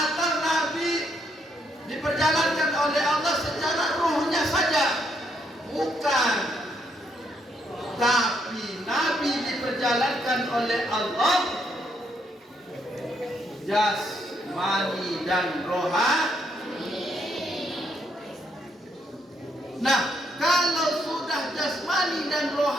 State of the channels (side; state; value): both; normal; correlation 0.74